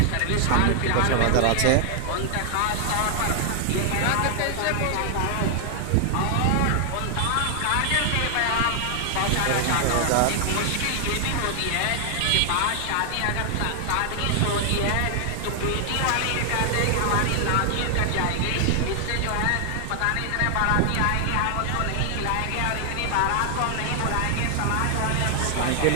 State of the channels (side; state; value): both; different; correlation 0.00